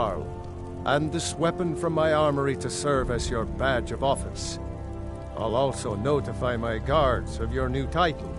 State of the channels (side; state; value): both; identical; correlation 1.00